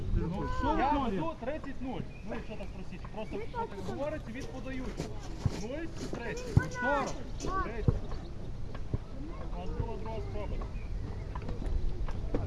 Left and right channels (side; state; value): both; identical; correlation 1.00